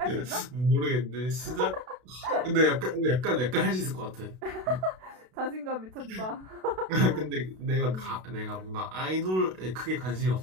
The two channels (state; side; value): late; left; 32 ms